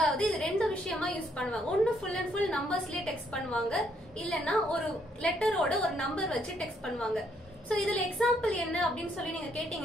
இது ரெண்டு விஷயமா யூஸ் பண்ணுவாங்க. ஒன்னு ஃபுல் அண்ட் ஃபுல் நம்பர்ஸ்லயே டெக்ஸ்ட் பண்ணுவாங்க, இல்லன்னா ஒரு லெட்டரோட ஒரு நம்பர் வச்சு டெக்ஸ்ட் பண்ணுவாங்க. சோ இதுல எக்ஸாம்பிள் என்ன அப்படின்னு சொல்லி நீங்க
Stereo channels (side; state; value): both; normal; correlation 0.71